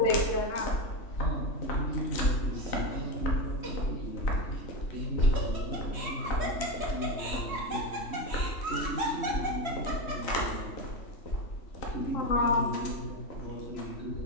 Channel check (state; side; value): late; right; 3.1 ms